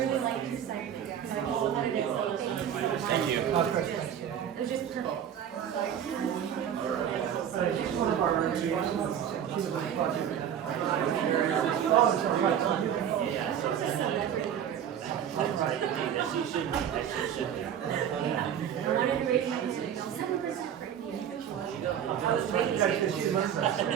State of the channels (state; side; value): quieter; left; 9.3 dB